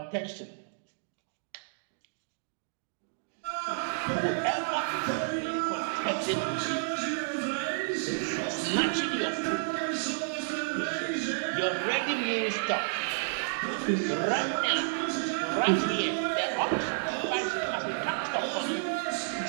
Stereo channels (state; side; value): silent; left; digital silence